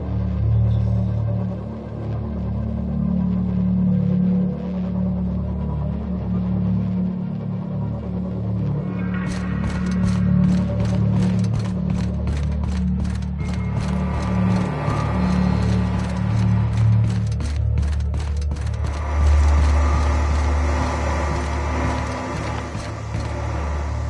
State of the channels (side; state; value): both; identical; correlation 1.00